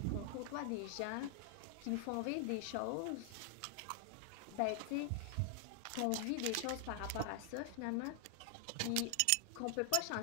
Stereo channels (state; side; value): different; both; correlation 0.00